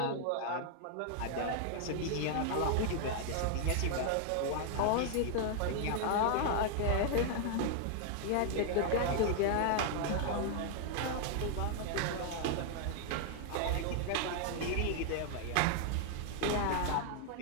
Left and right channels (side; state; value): both; different; correlation 0.00